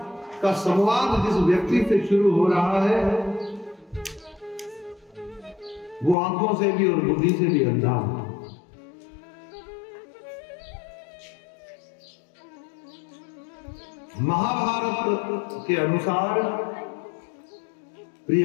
का संवाद जिस व्यक्ति से शुरू हो रहा है वो आंखों से भी और बुद्धि से भी अंधा है। महाभारत के अनुसार प्रिय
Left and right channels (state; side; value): drops out; right; at 6.2 s